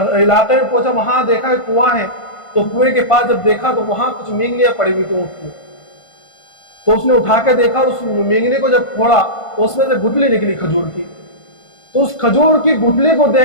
میں پہنچا، وہاں دیکھا کہ کنواں ہے. تو کنویں کے پاس جب دیکھا تو وہاں کچھ مینگنیاں پڑی ہوئی تھیں اونٹ میں. تو اس نے اٹھا کے دیکھا، اس مینگنے کو جب کھولا تو اس میں سے گٹلی نکلی کھجور کی. تو اس کھجور کی گٹلی کو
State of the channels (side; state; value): right; late; 1.5 ms